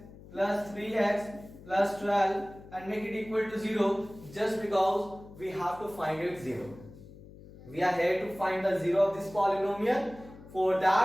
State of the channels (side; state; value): left; noise; hum, 19 dB below the sound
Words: plus 3x plus 12 and make it equal to 0, just because we have to find it 0. We are here to find the 0 of this polynomial. For